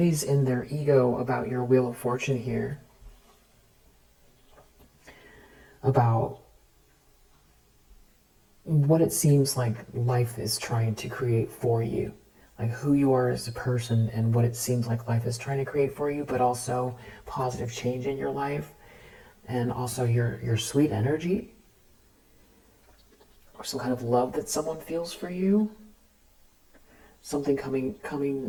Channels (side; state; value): both; identical; correlation 1.00